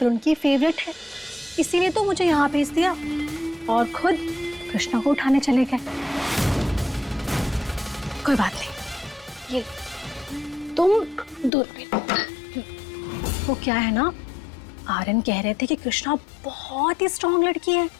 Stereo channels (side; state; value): right; drops out; at 11.5 s